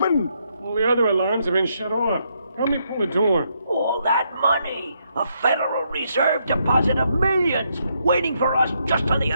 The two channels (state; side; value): inverted; both; correlation -0.76